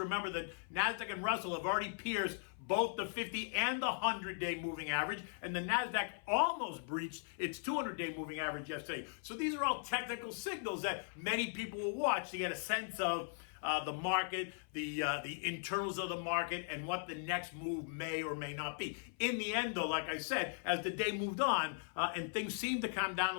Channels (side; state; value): right; silent; 52 dB below the other